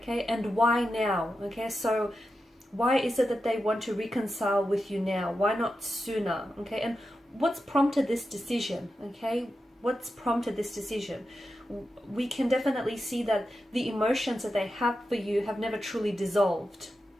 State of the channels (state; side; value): normal; both; correlation 0.90